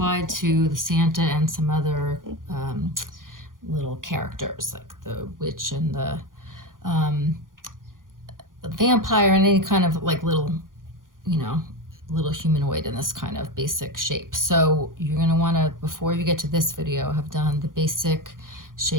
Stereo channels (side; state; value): left; late; 0.90 ms